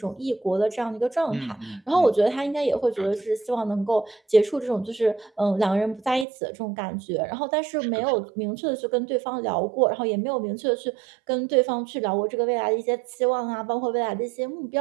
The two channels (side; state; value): left; drops out; at 6.2 s